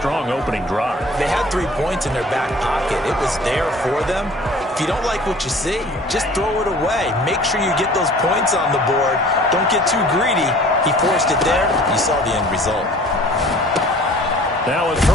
opening drive. They had 3 points in their back pocket. It was there for them. If you don't like what you see, just throw it away. Make sure you get those points on the board. Don't get too greedy. He forced it there. You saw the end result. Now a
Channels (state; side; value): normal; both; correlation 0.48